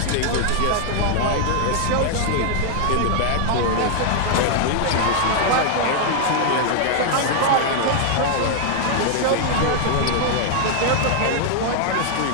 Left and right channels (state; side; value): different; both; correlation 0.00